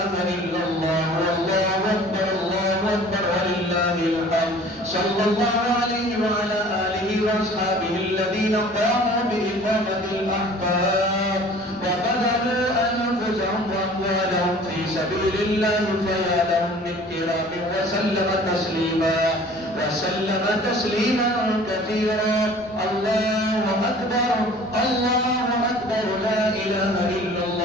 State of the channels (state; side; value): noise; right; rumble, 27 dB below the sound